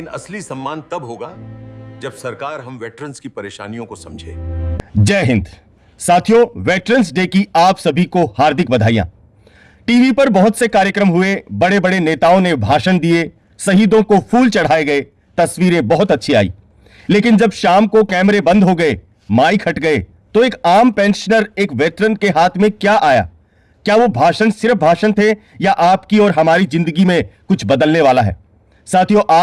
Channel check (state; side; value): identical; both; correlation 1.00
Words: असली सम्मान तब होगा जब सरकार हम वेटरन्स की परेशानियों को समझे। जय हिंद साथियों, वेटरन्स डे की आप सभी को हार्दिक बधाइयां। टीवी पर बहुत से कार्यक्रम हुए, बड़े बड़े नेताओं ने भाषण दिए, शहीदों को फूल चढ़ाए गए, तस्वीरें बहुत अच्छी आई। लेकिन जब शाम को कैमरे बंद हो गए, माइक हट गए, तो एक आम पेंशनर, एक वेटरन के हाथ में क्या आया? क्या वो भाषण सिर्फ भाषण थे या आपकी और हमारी जिंदगी में कुछ बदलने वाला है? साथियों,